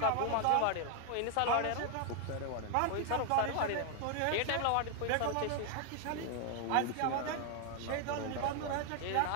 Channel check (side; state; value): both; different; correlation 0.00